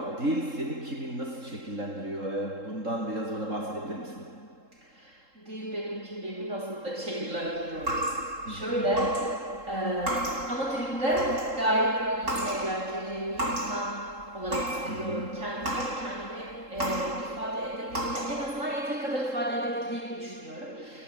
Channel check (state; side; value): late; left; 3.7 ms